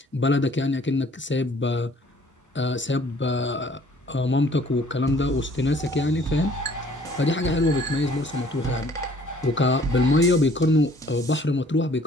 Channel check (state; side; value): normal; both; correlation 0.57